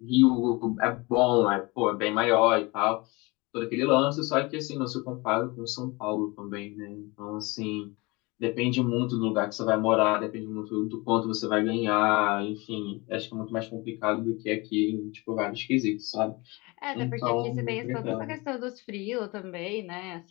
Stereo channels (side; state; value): right; quieter; 25.0 dB